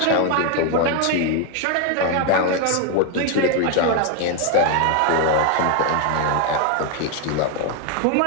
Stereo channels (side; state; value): both; different; correlation 0.01